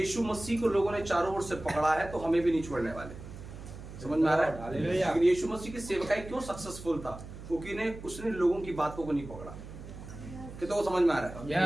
मसीह को लोगों ने चारों ओर से पकड़ा है तो हमें भी नहीं छोड़ने वाले। समझ में आ रहा है? लेकिन यीशु मसीह की सेवकाई क्यों सक्सेसफुल था? क्योंकि उसने लोगों की बातों को नहीं पकड़ा। कितनों को समझ में आ रहा है?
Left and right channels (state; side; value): noise; right; hum, 13 dB below the sound